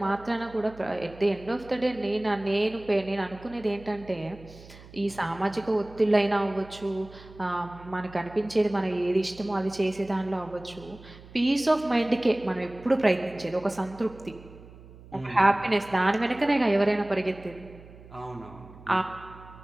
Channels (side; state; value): right; noise; hum, 20 dB below the sound